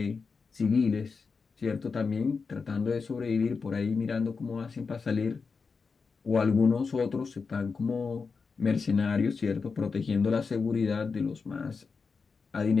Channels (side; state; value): right; quieter; 4.9 dB